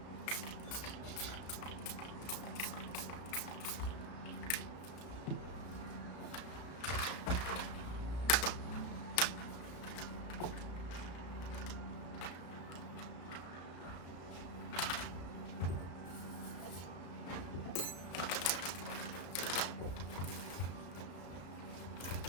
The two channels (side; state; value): right; late; 34 ms